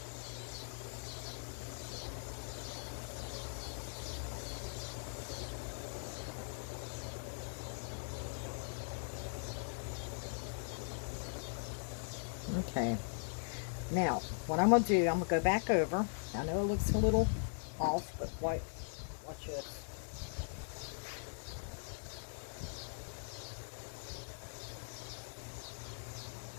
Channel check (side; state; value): right; silent; digital silence